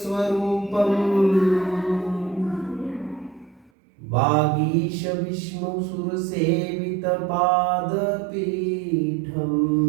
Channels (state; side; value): drops out; left; at 3.7 s